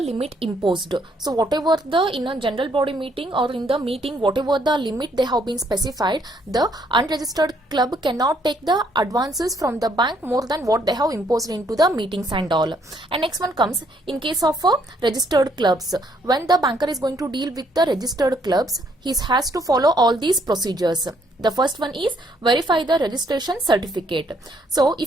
imposed. So whatever in a general body meeting or in the meeting, whatever the limit they have been specified, the unregistered club cannot take the advances from the bank more than what they have imposed into the meetings and all. And next one comes, in case of registered clubs, when the banker is going to deal with the registered clubs, he has to follow all these procedures. The first one is verify the registration certificate. So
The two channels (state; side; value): normal; both; correlation 0.69